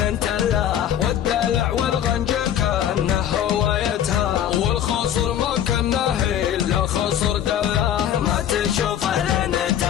تله، والدلع والغنج كانه هوايتها، والخصر ما كانه الا خصر دله، ما تشوفه لين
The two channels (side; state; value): right; quieter; 10.2 dB